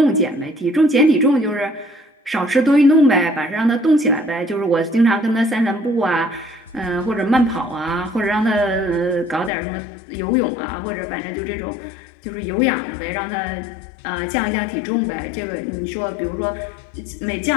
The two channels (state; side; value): drops out; right; at 9.5 s